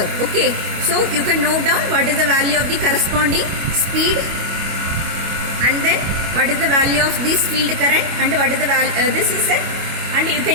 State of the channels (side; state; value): left; late; 25 ms